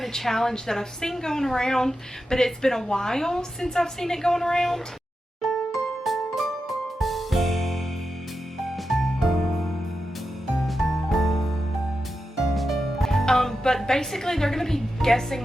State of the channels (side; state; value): both; normal; correlation 0.90